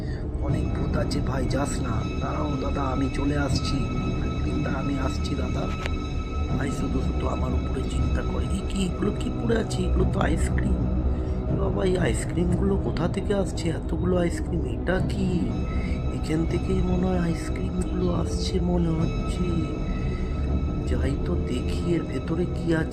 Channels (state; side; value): identical; both; correlation 1.00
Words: অনেক ভূত আছে ভাই, যাস না। দাঁড়াও দাদা, আমি চলে আসছি। ফ্র্যাঙ্কলিন দা, আমি আসছি দাদা। ভাই শুধু শুধু আমার উপরে চিন্তা করে, কি এগুলো কি পড়ে আছে? এগুলো তো আইসক্রিম। বাবা এই আইসক্রিমগুলো কোথা থেকে আসছে? এতগুলো আইসক্রিম, এটা কি? এখান থেকেই মনে হয় আইসক্রিমগুলো আসছে মনে হচ্ছে। যাই তো দেখি এর ভেতরে কি